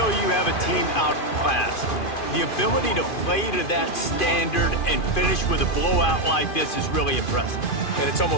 you have a team outclassed, the ability to play to that standard and finish with a blowout like this is really impressive. and it's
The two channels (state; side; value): late; right; 2.5 ms